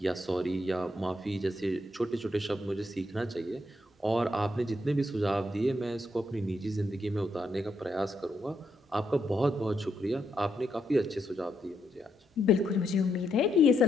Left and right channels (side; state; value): both; normal; correlation 0.79